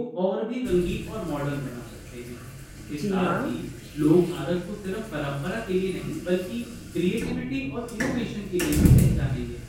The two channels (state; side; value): identical; both; correlation 1.00